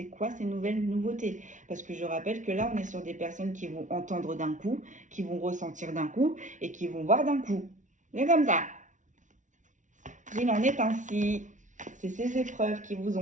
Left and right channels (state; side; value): late; left; 0.37 ms